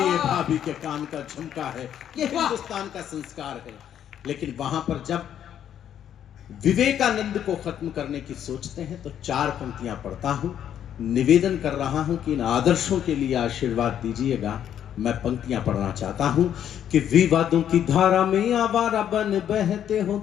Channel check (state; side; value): quieter; right; 9.9 dB